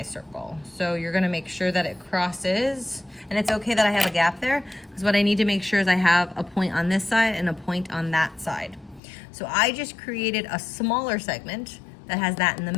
So you're going to make sure that it crosses. And it's okay that I have a gap there because what I need to make sure is I have a point on this side and a point on that side. So I just created a smaller segment that has that in the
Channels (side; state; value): right; drops out; at 9.0 s